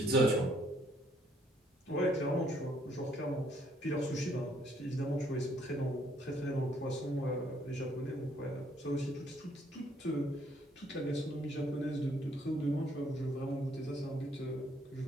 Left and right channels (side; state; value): both; normal; correlation 0.67